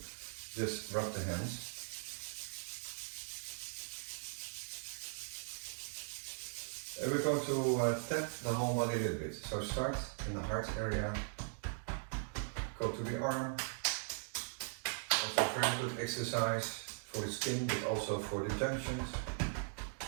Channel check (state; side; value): silent; left; digital silence